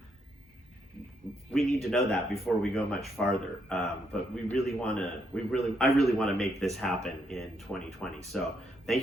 We need to know that before we go much farther. But I really want to make this happen in 2020. So thank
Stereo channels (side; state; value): both; normal; correlation 0.76